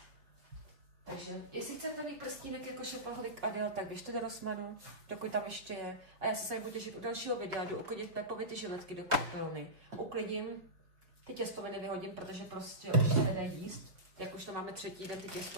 Takže, jestli chcete mít prstínek jako šapaholik Adele, tak běžte do Rossmannu, dokud tam ještě je. A já se tady budu těšit u dalšího videa, jdu uklidit Pepovi ty žiletky do koupelny. Uklidím, ty těstoviny vyhodím, protože prostě už se nedá jíst. Jak už to máme 3. den ty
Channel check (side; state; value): left; late; 5.0 ms